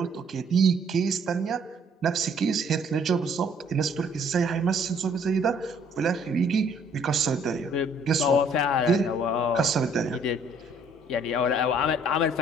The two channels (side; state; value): both; normal; correlation 0.61